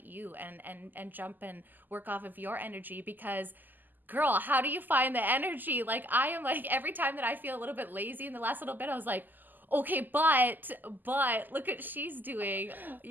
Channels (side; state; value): left; late; 0.087 ms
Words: you and jump and work off of your energy, because girl, how do you find the energy? Like, I am like, every time that I feel a little bit lazy in the last little bit, I was like, okay, but look what she's doing.